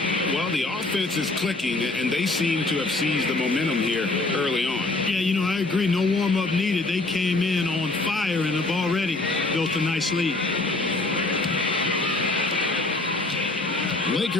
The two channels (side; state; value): right; quieter; 3.1 dB